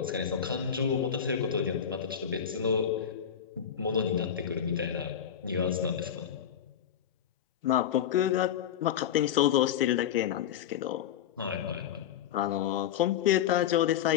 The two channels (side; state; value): right; quieter; 9.2 dB